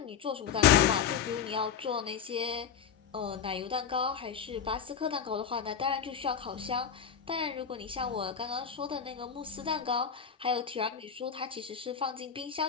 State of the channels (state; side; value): quieter; right; 7.4 dB